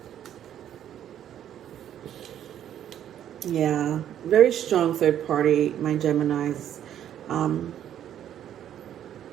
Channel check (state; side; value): quieter; left; 10.5 dB